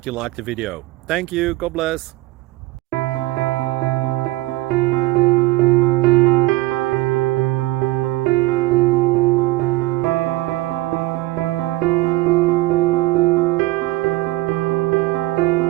you like the video. Thank you, God bless.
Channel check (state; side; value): quieter; left; 18.8 dB